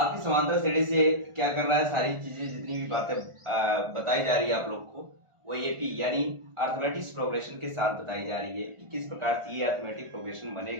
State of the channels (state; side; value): late; left; 1.4 ms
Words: समांतर श्रेणी से क्या कर रहा है, सारी चीजें जितनी भी बातें बताई जा रही है आप लोग को, वो एपी यानी अर्थमेटिक प्रोग्रेशन के साथ बताई जा रही है कि किस प्रकार से ये अर्थमेटिक प्रोग्रेशन